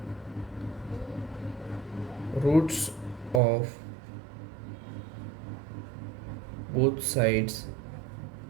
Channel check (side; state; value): left; drops out; at 3.4 s